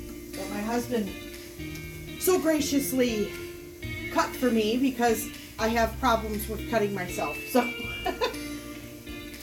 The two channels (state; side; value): identical; both; correlation 1.00